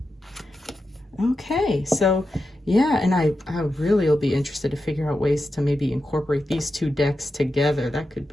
Okay, so yeah, and I really will be interested to figure out ways to maybe incorporate these two decks together. That could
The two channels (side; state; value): both; normal; correlation 0.89